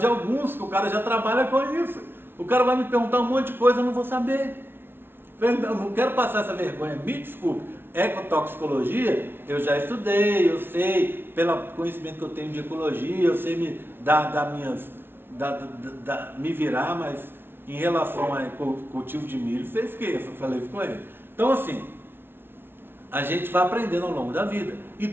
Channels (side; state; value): left; late; 0.11 ms